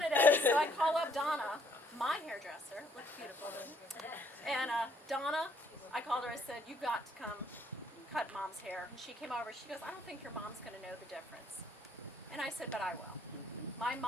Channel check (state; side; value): normal; both; correlation 0.66